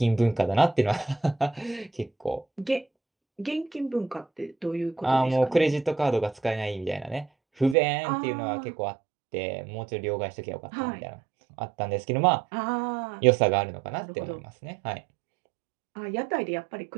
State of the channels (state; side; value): drops out; left; at 7.8 s